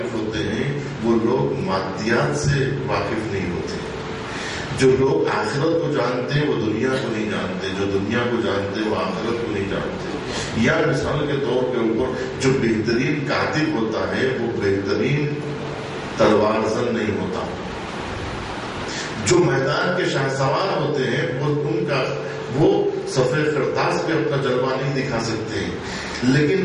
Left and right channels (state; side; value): identical; both; correlation 1.00